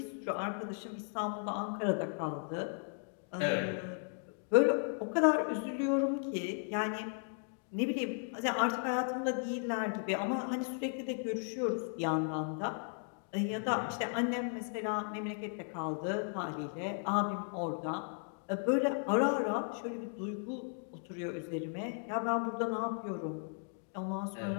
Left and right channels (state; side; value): silent; right; 54 dB below the other